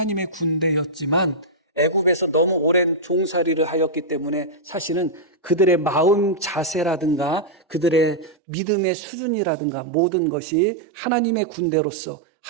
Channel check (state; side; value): drops out; left; at 8.3 s